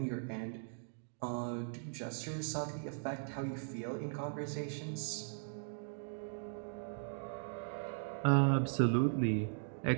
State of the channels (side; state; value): left; silent; digital silence